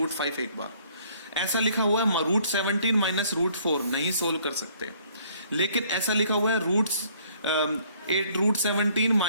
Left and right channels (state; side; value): inverted; both; correlation -0.61